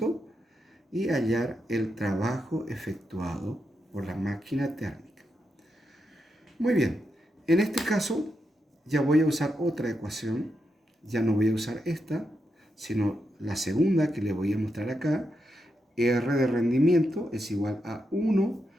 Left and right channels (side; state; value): both; normal; correlation 0.85